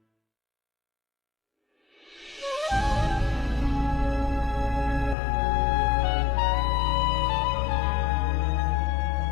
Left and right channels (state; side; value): drops out; right; at 5.2 s